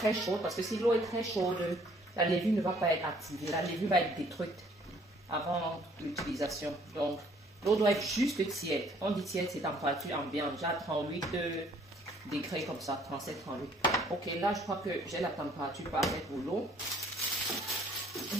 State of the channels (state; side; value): normal; both; correlation 0.61